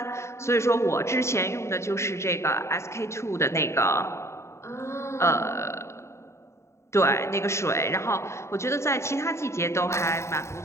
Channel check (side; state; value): right; late; 0.13 ms